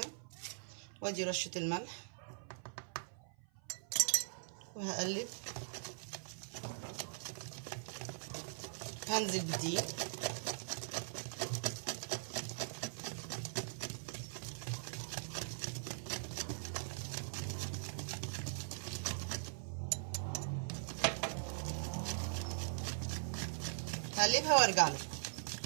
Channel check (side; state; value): left; silent; 50 dB below the other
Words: وادي رشه الملح وهقلب. هنزل بالدقيق. هقلبها وارجع لكم.